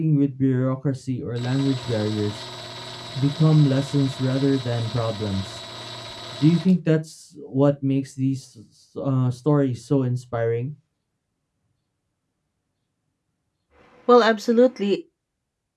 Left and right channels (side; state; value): both; identical; correlation 1.00